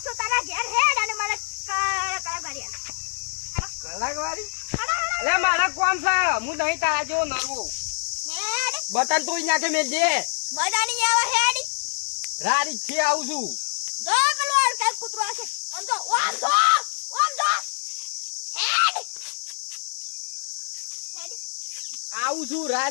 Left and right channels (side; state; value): right; silent; digital silence